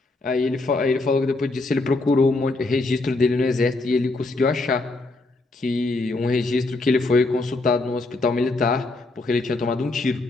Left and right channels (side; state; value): right; quieter; 3.1 dB